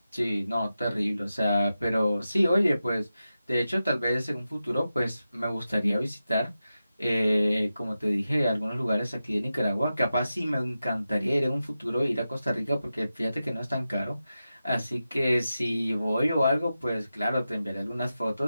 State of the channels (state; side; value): inverted; both; correlation -0.92